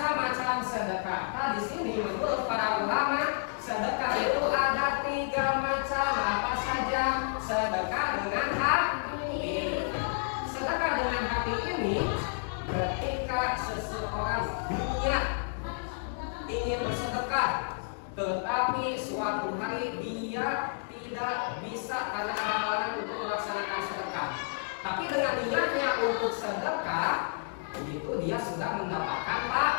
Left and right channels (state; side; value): silent; right; digital silence